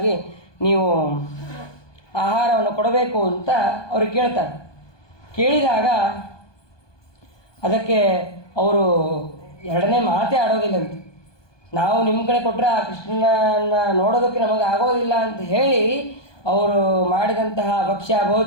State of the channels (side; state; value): right; late; 1.2 ms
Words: ನೀವು ಆಹಾರವನ್ನು ಕೊಡಬೇಕು ಅಂತ ಅವ್ರಿಗೆ ಕೇಳ್ತಾರೆ. ಕೇಳಿದಾಗ ಅದಕ್ಕೆ ಅವರು ಎರಡನೇ ಮಾತೇ ಆಡೋದಿಲ್ಲಂತೆ. ನಾವು ನಿಮ್ಮ ಕಡೆ ಕೊಟ್ಟರೆ ಆ ಕೃಷ್ಣನ ನೋಡೋದಕ್ಕೆ ನಮಗೆ ಆಗೋದಿಲ್ಲ ಅಂತ ಹೇಳಿ ಅವರು ಮಾಡಿದಂತಹ ಭಕ್ಷ್ಯ